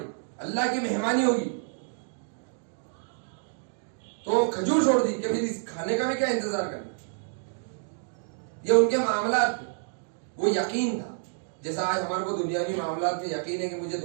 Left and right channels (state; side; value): silent; left; digital silence